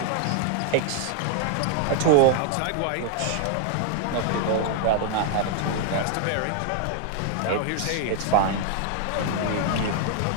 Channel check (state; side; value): different; both; correlation 0.00